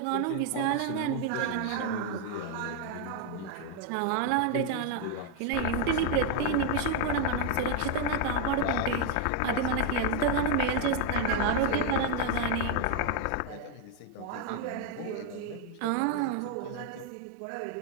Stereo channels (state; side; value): different; both; correlation 0.01